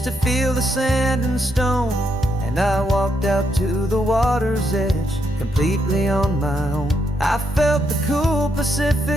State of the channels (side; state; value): both; normal; correlation 0.78